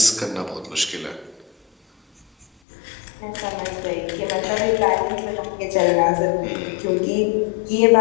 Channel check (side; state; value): right; drops out; at 2.5 s